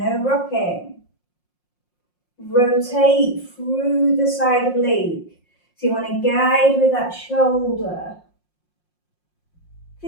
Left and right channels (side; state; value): right; late; 5.6 ms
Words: rocking. Rotate through the side oblique. So you want to guide with that shoulder.